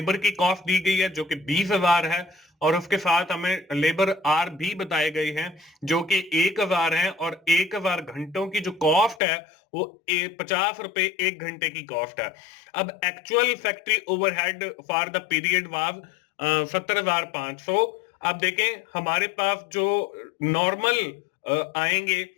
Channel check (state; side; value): drops out; right; at 9.2 s